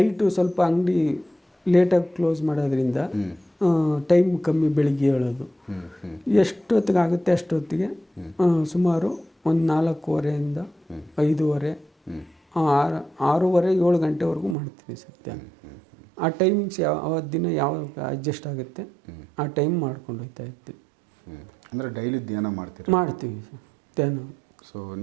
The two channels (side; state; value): left; drops out; at 14.6 s